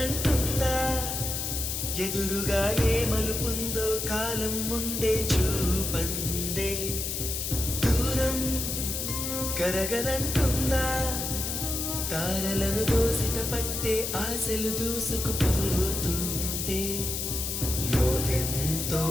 ఎదురుగా ఏ మలుపుందో కాలం ముందే చూపందే దూరం కరగనంటుందా తారలను దోసిట పట్టే ఆశలు దూసుకుపోతుంటే లోతెంతో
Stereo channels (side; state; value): left; noise; hiss, 3 dB below the sound